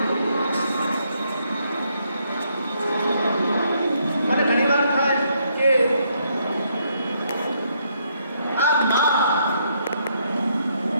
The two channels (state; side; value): inverted; both; correlation -0.73